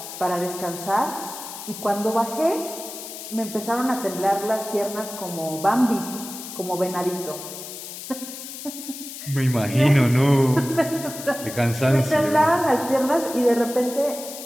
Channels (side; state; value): left; noise; hiss, 11 dB below the sound